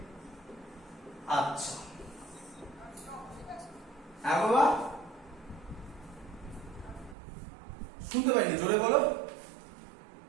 আচ্ছা হ্যাঁ বাবা, শুনতে পাইনি, জোরে বলো।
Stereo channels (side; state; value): left; drops out; at 7.2 s